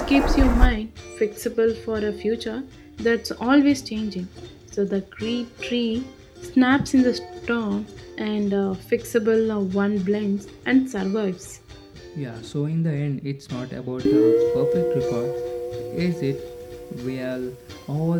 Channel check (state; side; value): identical; both; correlation 1.00